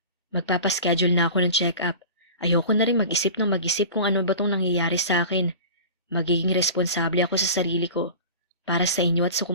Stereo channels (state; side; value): inverted; both; correlation -0.36